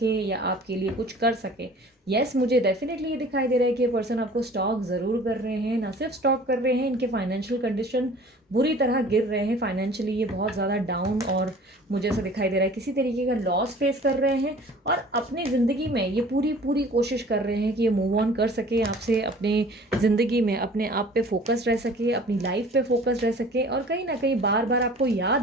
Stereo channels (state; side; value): normal; both; correlation 0.48